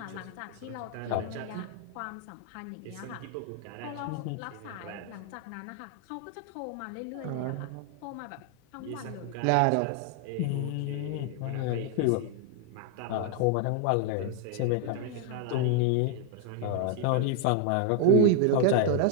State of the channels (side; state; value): both; different; correlation 0.00